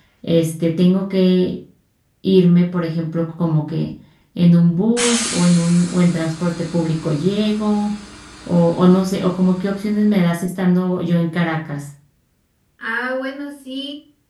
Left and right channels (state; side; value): identical; both; correlation 1.00